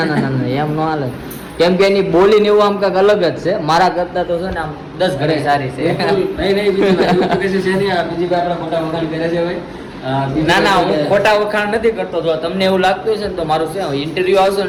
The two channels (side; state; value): both; identical; correlation 1.00